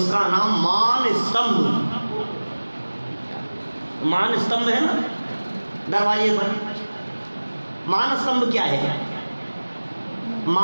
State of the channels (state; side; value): inverted; both; correlation -1.00